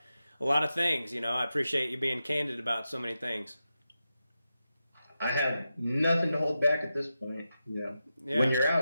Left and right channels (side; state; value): both; inverted; correlation -0.90